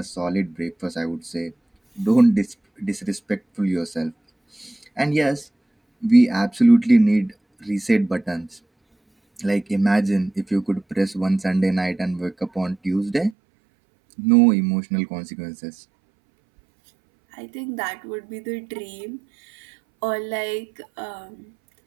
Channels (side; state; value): left; drops out; at 13.4 s